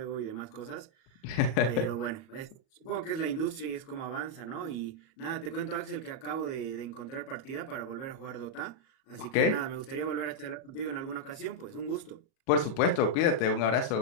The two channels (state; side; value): late; right; 37 ms